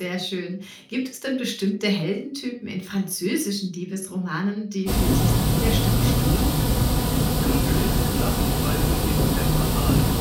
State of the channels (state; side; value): identical; both; correlation 1.00